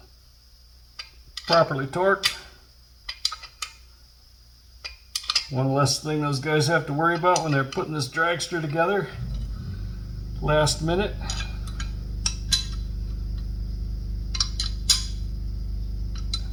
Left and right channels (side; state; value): both; identical; correlation 1.00